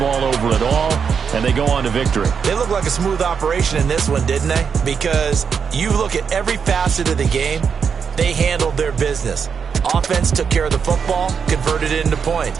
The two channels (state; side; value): quieter; left; 6.5 dB